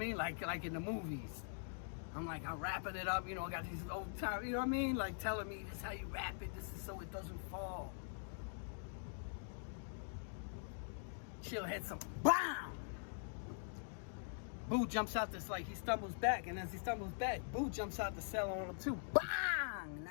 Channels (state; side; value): silent; right; digital silence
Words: Like in the movies. I'm wrapping it up. You know, I got these old time. You know what I mean? Like telling me this is how you wrap it. This is so it doesn't fall. Chill hit some BAM! Boo jumps out this, like he stumbles back, and as he stumbles back, Boo jumps out the cell on him too. BANG!